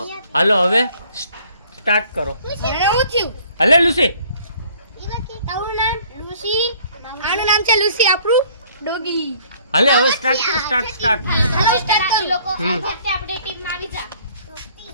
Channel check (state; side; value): inverted; both; correlation -0.57